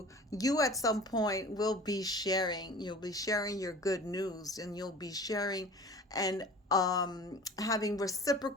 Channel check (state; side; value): normal; both; correlation 0.42